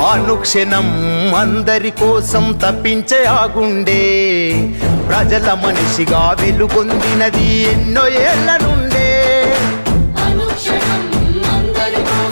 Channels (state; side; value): inverted; both; correlation -1.00